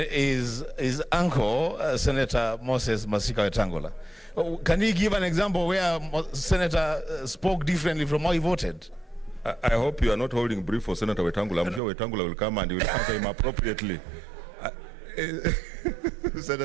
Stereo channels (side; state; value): left; drops out; at 11.8 s